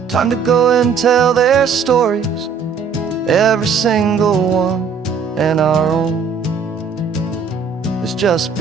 Time to go and tell their stories, every single one, and our own has just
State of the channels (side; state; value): left; quieter; 5.9 dB